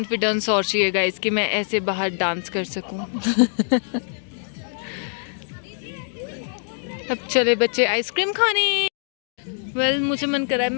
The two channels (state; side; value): silent; right; digital silence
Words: और चाहिए गाइस कि मैं ऐसे बाहर डांस कर सकूं। अब चले बच्चे आइसक्रीम खाने। वेल मुझे मन कर रहा है